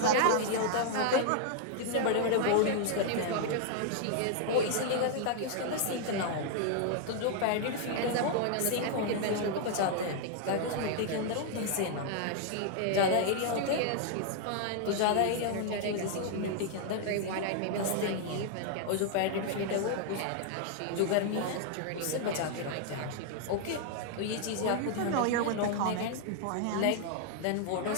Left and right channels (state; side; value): different; both; correlation 0.00